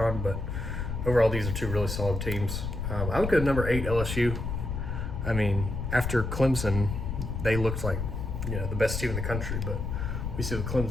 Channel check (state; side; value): noise; left; rumble, 3 dB below the sound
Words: But overall, these are 2 really solid teams. I would go to number 8 LSU. I mean, after Clemson, they looked like, you know, the best team in the country, but we see what